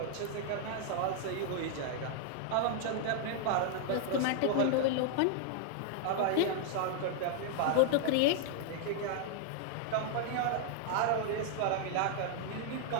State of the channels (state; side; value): different; both; correlation -0.01